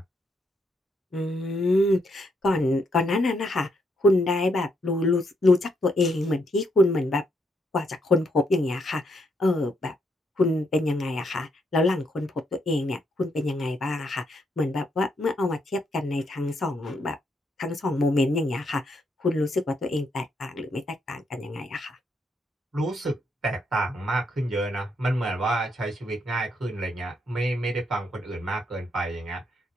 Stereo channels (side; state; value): both; normal; correlation 0.77